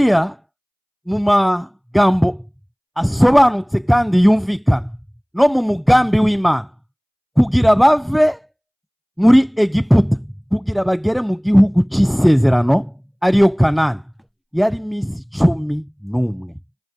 mu magambo asobanutse kandi yumvikana no mu mugambi w'Imana, kugira bave muri Egiputa kugira bagere mu gihugu c'isezerano ariyo Kanani, yari misi 11.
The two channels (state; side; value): identical; both; correlation 1.00